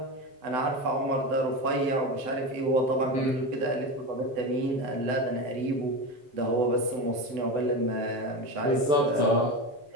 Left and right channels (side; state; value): left; late; 7.9 ms